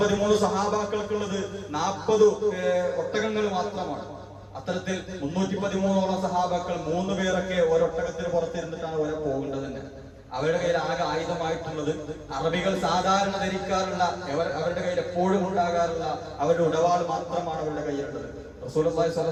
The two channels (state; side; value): identical; both; correlation 1.00